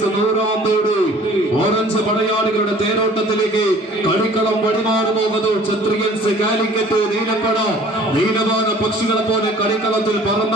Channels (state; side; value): normal; both; correlation 0.51